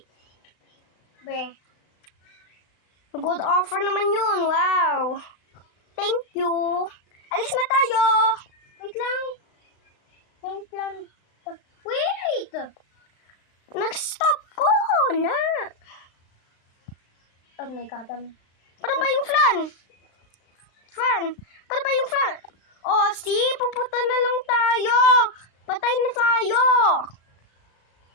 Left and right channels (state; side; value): late; right; 36 ms